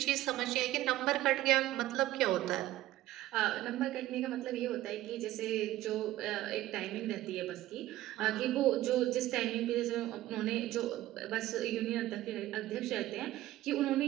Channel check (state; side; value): quieter; left; 15.1 dB